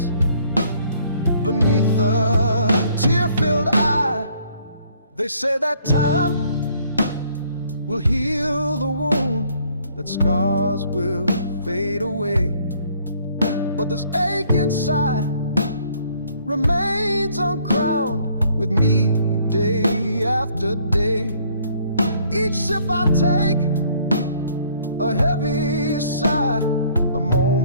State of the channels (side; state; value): both; inverted; correlation -0.62